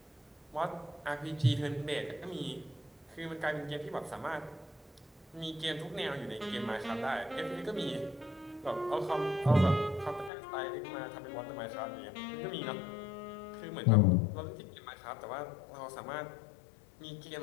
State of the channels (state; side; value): drops out; right; at 10.3 s